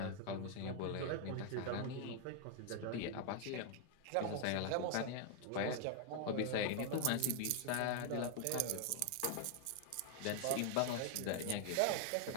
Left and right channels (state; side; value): different; both; correlation 0.00